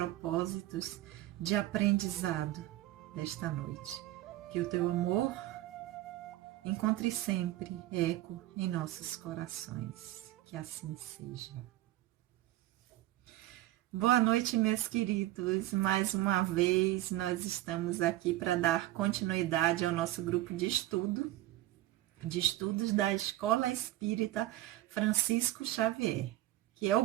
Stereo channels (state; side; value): quieter; left; 15.7 dB